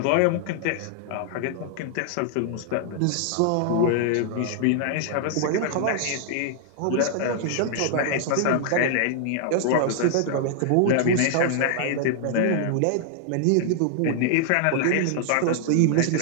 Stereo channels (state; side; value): different; both; correlation 0.00